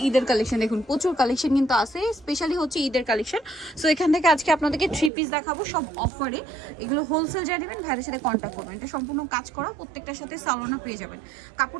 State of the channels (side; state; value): left; drops out; at 5.1 s